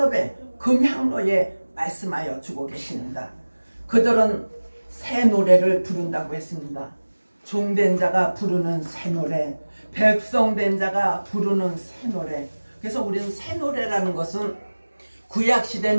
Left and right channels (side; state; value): both; inverted; correlation -1.00